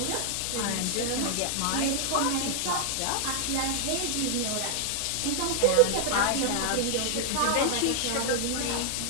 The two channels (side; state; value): both; different; correlation 0.00